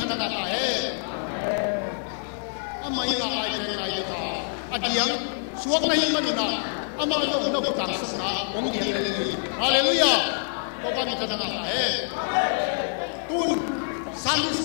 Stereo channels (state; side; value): silent; right; 61 dB below the other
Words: nga ta he ama ina ai teng nai ta adiang suak na hi manuna ama long no putang sang na ong diang le li hallelujah to ba min thana nga ta he tun Sunday